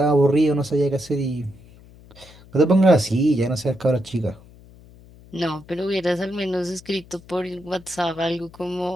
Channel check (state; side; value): noise; left; hum, 23 dB below the sound